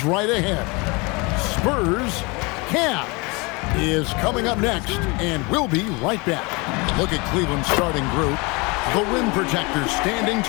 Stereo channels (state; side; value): quieter; right; 27.6 dB